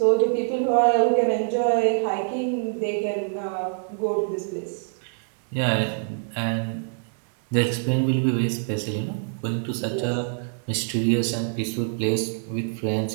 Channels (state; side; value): silent; left; 62 dB below the other